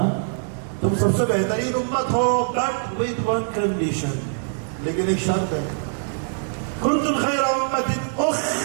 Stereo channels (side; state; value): left; silent; digital silence